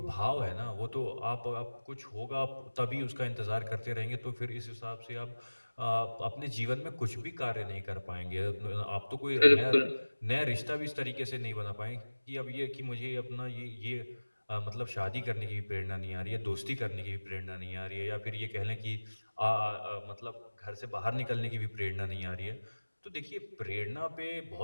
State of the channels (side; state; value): both; inverted; correlation -1.00